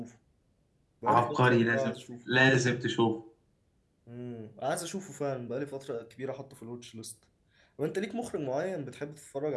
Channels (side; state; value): both; identical; correlation 1.00